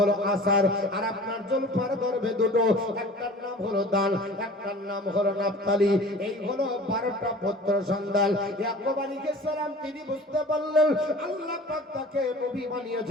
আসার। আর আপনার জুলফার গর্ভে দুটো, একটার নাম হলো দান, একটার নাম হলো নাফতালি। এই হলো 12টা পুত্র সন্তান। ইয়াকুব আলাইহিস সালাম তিনি বুঝতে পারলেন আল্লাহ পাক তাকে নবী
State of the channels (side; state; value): both; normal; correlation 0.42